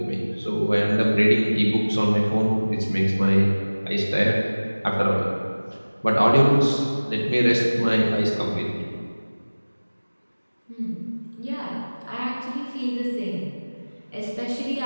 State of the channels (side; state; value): both; inverted; correlation -1.00